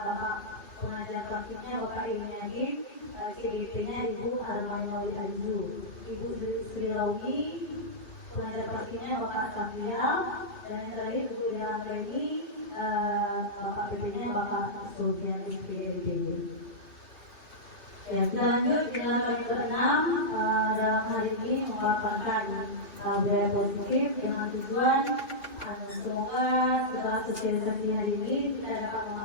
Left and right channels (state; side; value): late; right; 3.0 ms